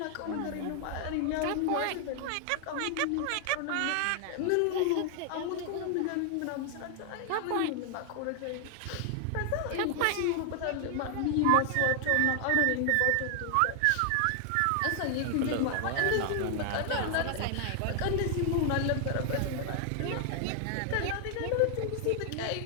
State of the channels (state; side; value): different; both; correlation 0.00